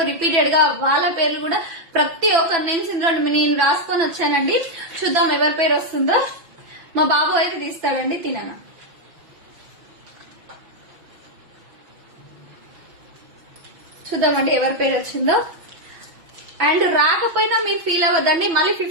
రిపీటెడ్ గా వాళ్ళ పేర్లు కూడా ప్రతి ఒక్కరి నేమ్స్ నేను రాసుకొని వచ్చానండి. చూద్దాం ఎవరి పేరు వస్తుందో. మా బాబు అయితే తీస్తాడండి. తిననా చూద్దామండి ఎవరి పేరు వచ్చిందో. అండ్ రాకపోయినా మీరు ఫీల్ అవ్వద్దండి, మళ్ళీ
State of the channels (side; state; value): left; late; 6.0 ms